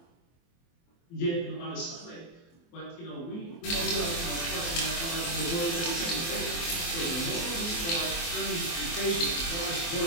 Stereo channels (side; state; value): right; late; 24 ms